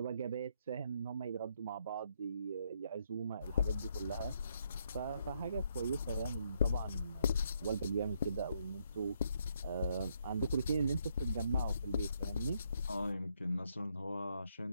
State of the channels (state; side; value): inverted; both; correlation -0.74